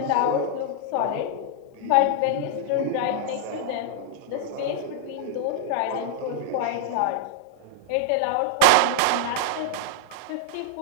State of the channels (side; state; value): both; different; correlation -0.01